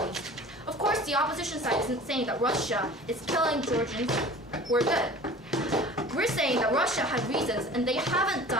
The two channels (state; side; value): normal; both; correlation 0.42